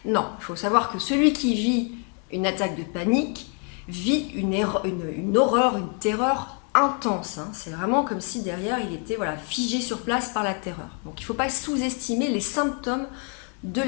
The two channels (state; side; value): quieter; right; 39.1 dB